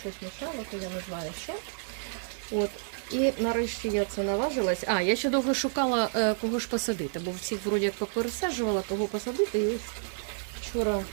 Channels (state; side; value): silent; left; digital silence